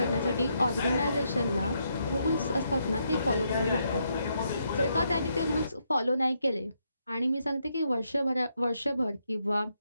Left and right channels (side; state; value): both; inverted; correlation -0.78